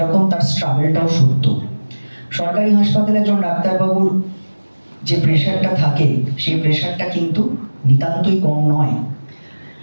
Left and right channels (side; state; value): both; inverted; correlation -1.00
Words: তার স্ট্রাগলটাও সত্য। সরকারি হাসপাতালে একজন ডাক্তারবাবুর যে প্রেশারটা থাকে, সেই প্রেশারটা কিন্তু নিতান্তই কম নয়।